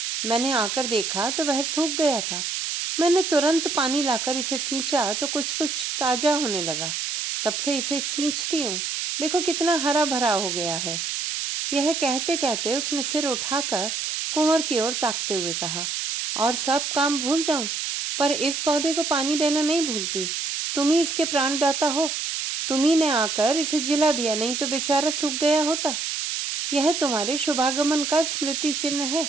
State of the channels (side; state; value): right; noise; hiss, 2 dB below the sound